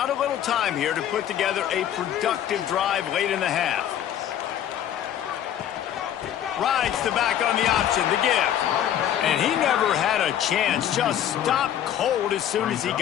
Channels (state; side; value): quieter; right; 10.6 dB